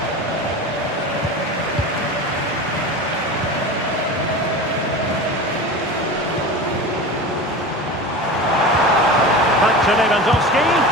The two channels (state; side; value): normal; both; correlation 0.30